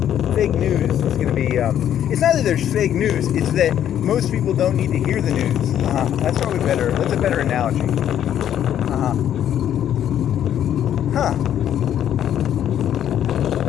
Fake news is going to be. It's not that there's fake news. It's that most people don't need to hear the news. That's probably better. That's a better analogy.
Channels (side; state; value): right; quieter; 10.4 dB